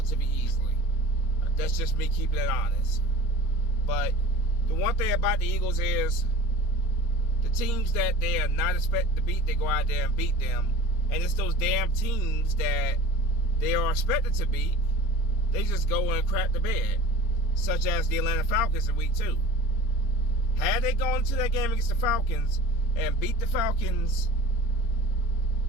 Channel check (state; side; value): late; right; 4.3 ms